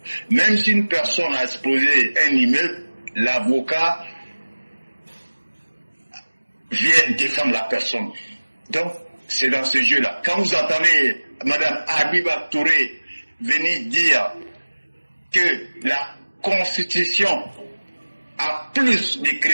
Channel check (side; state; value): both; inverted; correlation -1.00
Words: Même si une personne a explosé un immeuble, l'avocat vient défendre la personne. Donc, c'est dans ce jeu-là. Quand vous entendez Mme Habiba Touré venir dire que la Constitution a plus de